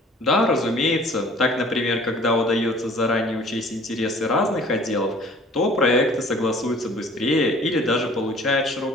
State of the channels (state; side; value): normal; both; correlation 0.51